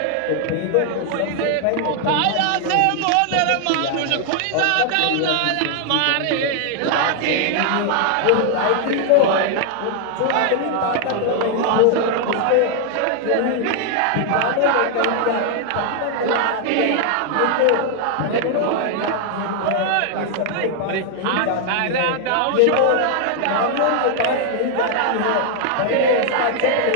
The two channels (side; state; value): both; different; correlation 0.00